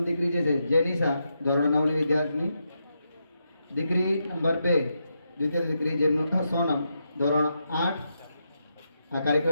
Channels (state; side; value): inverted; both; correlation -0.84